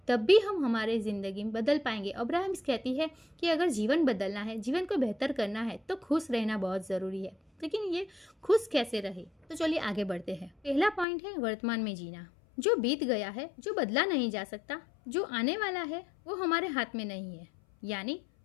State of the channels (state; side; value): drops out; right; at 11.1 s